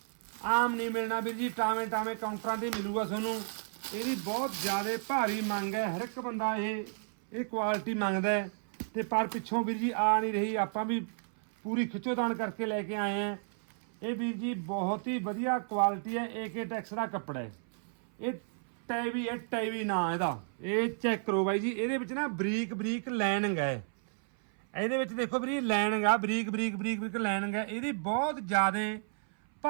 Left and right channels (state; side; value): silent; left; 56 dB below the other